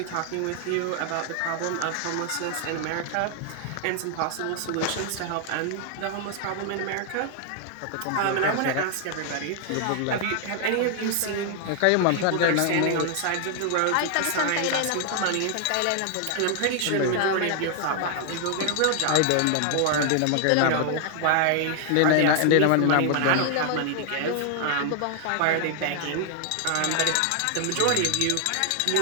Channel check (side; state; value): both; different; correlation 0.00